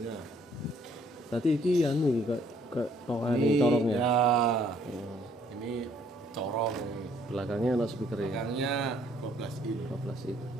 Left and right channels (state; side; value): normal; both; correlation 0.63